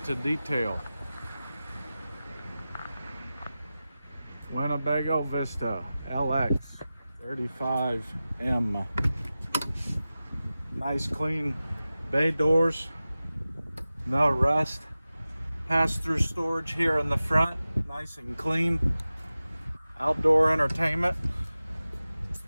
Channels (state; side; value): inverted; both; correlation -0.95